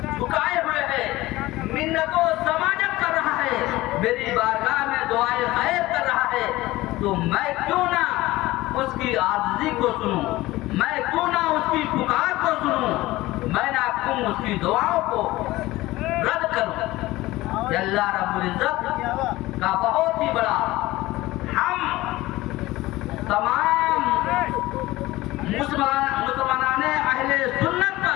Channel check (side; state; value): right; quieter; 18.2 dB